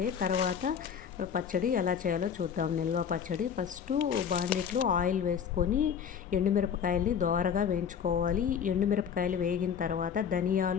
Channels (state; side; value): quieter; right; 7.6 dB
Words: తర్వాత పచ్చడి ఎలా చేయాలో చూద్దాం. నిల్వ పచ్చడి ఫస్ట్ బాండిట్లో ఆయిల్ వేసుకొని ఎండుమిరపకాయల్ని దోరగా వేయించుకోవాలి. ఎండుమిరపకాయలు వేగిన తర్వాత